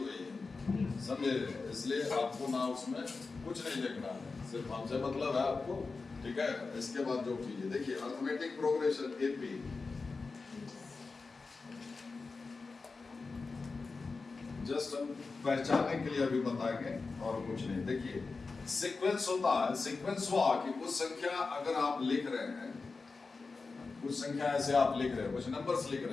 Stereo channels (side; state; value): right; quieter; 4.2 dB